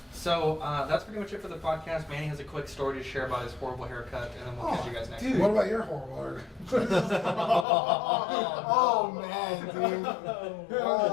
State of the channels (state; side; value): drops out; right; at 7.7 s